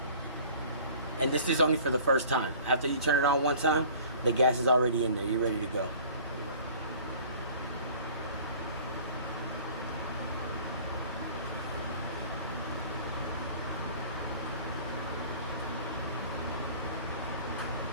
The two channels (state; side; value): inverted; both; correlation -0.47